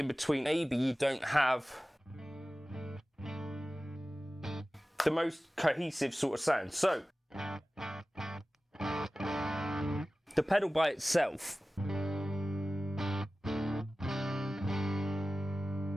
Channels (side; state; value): both; normal; correlation 0.96